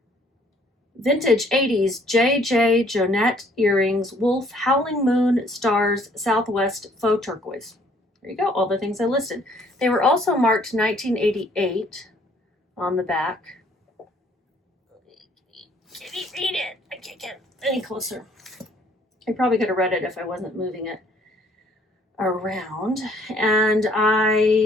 Vintage 80s JJ Jonette earrings, wolf, howling moon, stars, Southwest, faux turquoise. There you go, all the things I listed. They were also marked 1988 on the back. Can you read it? I can't get any closer. I probably could have read it if I wasn't moving it around. And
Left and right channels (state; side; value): normal; both; correlation 0.62